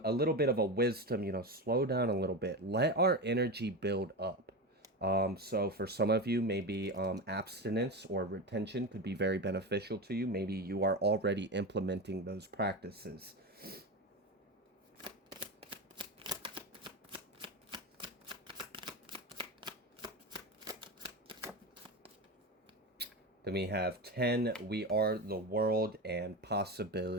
little bit of a wisdom, slow down a little bit. Let our energy build up. So for some of you, maybe abstinence or retention could be very beneficial to you. Maybe you are already implementing those practices. Then we have 10, we are the world and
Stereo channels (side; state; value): both; normal; correlation 0.20